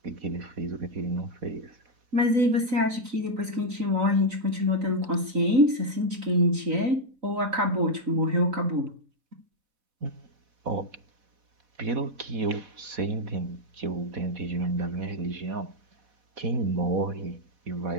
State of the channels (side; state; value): left; late; 3.9 ms